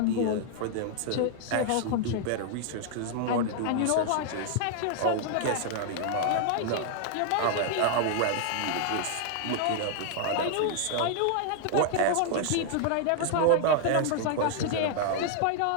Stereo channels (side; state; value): both; different; correlation 0.00